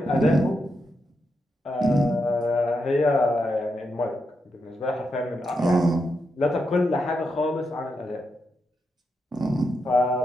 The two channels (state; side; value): normal; both; correlation 0.84